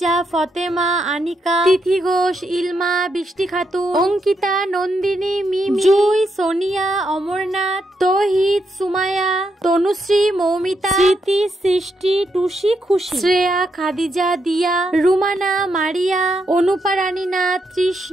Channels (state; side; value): normal; both; correlation 0.80